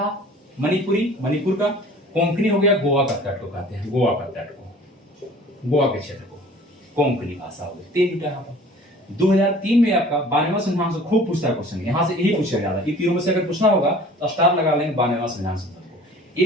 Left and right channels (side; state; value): both; normal; correlation 0.47